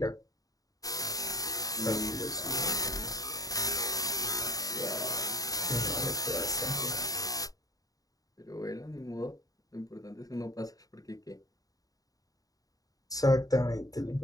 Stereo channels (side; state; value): right; late; 0.18 ms